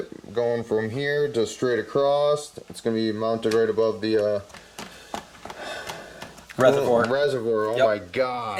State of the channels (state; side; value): identical; both; correlation 1.00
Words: going from here to straight across. It's going to be mounted right above the reservoir. Oh my